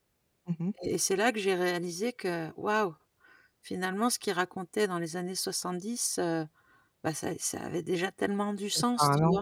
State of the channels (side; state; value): both; identical; correlation 1.00